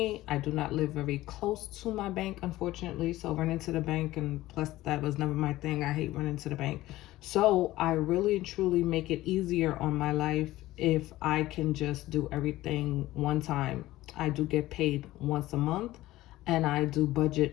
I do not live very close to my bank, unfortunately. So running to the bank, and plus that was never my thing. I hate running to the bank. So I really and truly make it easier on my life if I can just do everything one time. I do get paid once a month, and I do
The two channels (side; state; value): right; quieter; 16.6 dB